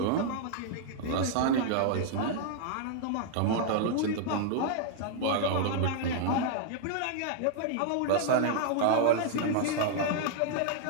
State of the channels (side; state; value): both; different; correlation -0.01